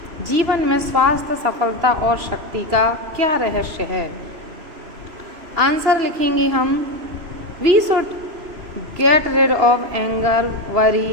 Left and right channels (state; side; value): late; left; 3.0 ms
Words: जीवन में स्वास्थ्य, सफलता और शक्ति का क्या रहस्य है। आंसर लिखेंगे हम, we should get rid of anger,